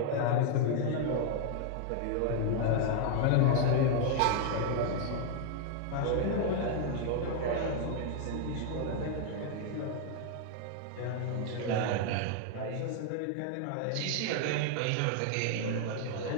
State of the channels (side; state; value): both; different; correlation 0.00